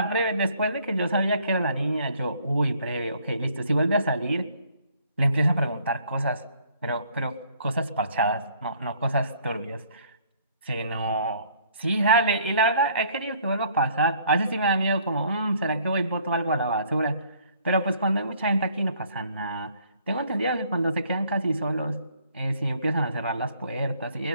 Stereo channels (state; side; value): inverted; both; correlation -0.61